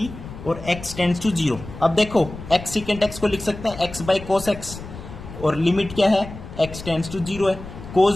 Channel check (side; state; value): left; noise; rumble, 13 dB below the sound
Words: और x टेंड्स टू 0। अब देखो x सीकेंट x को लिख सकते हैं x बाई कोस x, और लिमिट क्या है, x टेंड्स टू 0 है,